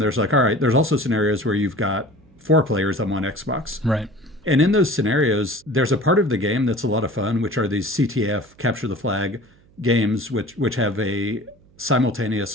like, all right, there's also scenarios where you've got 4 players on one Xbox. Right. And in those scenarios, there's a part of the game that's a lot of fun, which are these CTF, capture the flag games, which have a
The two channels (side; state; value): right; noise; hum, 29 dB below the sound